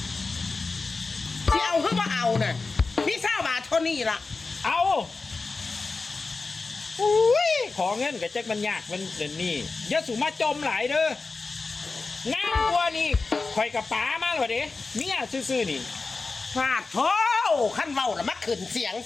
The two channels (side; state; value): right; quieter; 4.0 dB